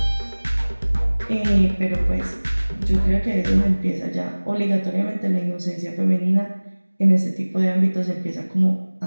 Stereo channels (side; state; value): both; inverted; correlation -1.00